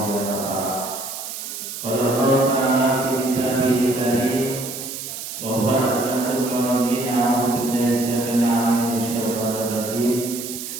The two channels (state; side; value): noise; right; hiss, 8 dB below the sound